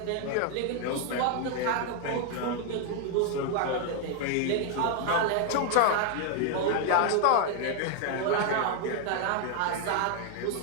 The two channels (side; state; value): both; different; correlation 0.00